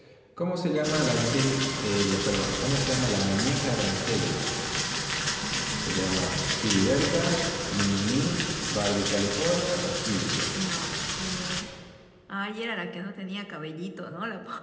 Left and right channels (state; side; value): identical; both; correlation 1.00